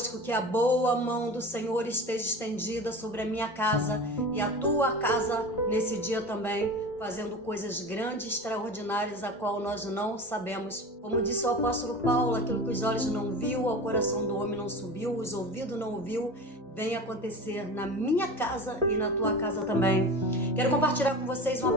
que a boa mão do Senhor esteja estendida sobre a minha casa e a tua casa nesse dia também, fazendo coisas grandes, extraordinárias, a qual nós não sabemos. Como disse o apóstolo Paulo, aquilo que os olhos não viu, ao coração do homem não subiu, os ouvidos não ouviu, vem acontecer na minha casa e na tua casa também. Quero compartilhar com vocês uma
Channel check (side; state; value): both; normal; correlation 0.32